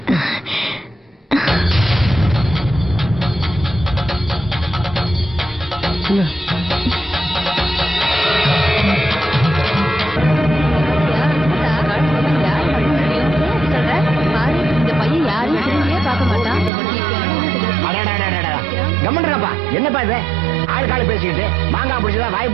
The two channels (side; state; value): left; drops out; at 16.7 s